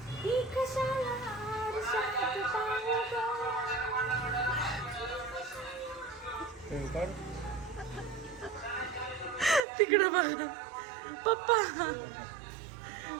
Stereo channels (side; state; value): left; drops out; at 9.6 s